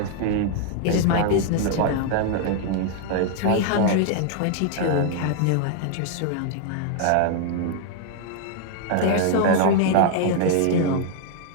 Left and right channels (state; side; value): different; both; correlation 0.00